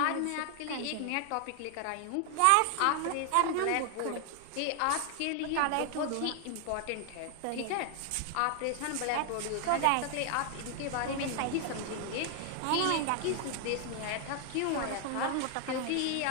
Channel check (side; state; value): both; different; correlation 0.00